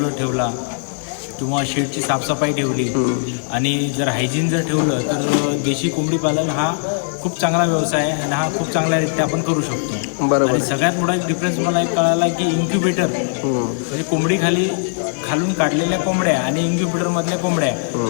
ठेवला किंवा शेडची साफसफाई ठेवली आणि जर हायजीन जर ठेवलं तर देशी कोंबडी पालन हा खूप चांगला व्यवसाय आहे आणि हा खूप चांगल्यारीत्या आपण करू शकतो. बरोबर. आणि सगळ्यात मोठा एक डिफरन्स मला एक कळाला की इन्क्युबेटर म्हणजे कोंबडी खालून काढलेल्या कोंबड्या आणि इन्क्युबेटरमधल्या कोंबड्या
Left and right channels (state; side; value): silent; right; 66 dB below the other